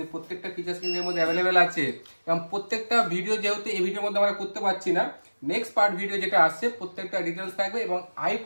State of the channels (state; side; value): inverted; both; correlation -1.00